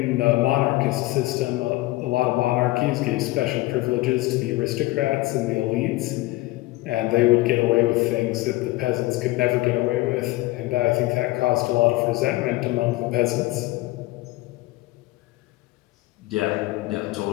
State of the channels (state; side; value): quieter; right; 19.2 dB